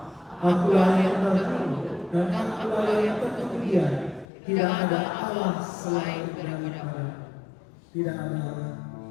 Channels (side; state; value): right; drops out; at 4.2 s